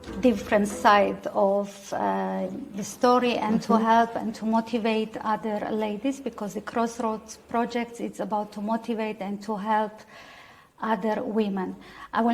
different side of the story and to help and to motivate other ladies, because the CrossRoads project is about to motivate and to help other women. I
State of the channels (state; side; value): identical; both; correlation 1.00